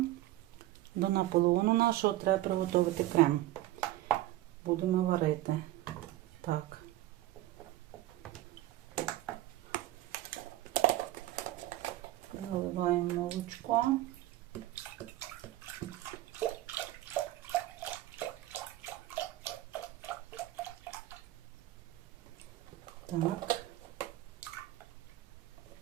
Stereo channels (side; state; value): left; quieter; 15.4 dB